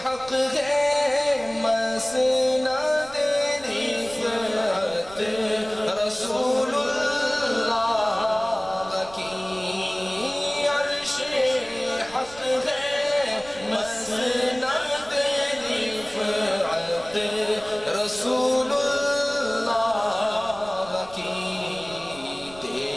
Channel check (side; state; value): right; noise; rumble, 20 dB below the sound